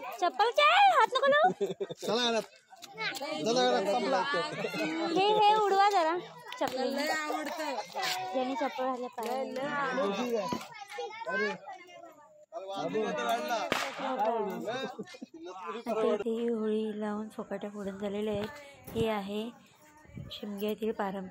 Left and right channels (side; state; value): both; identical; correlation 1.00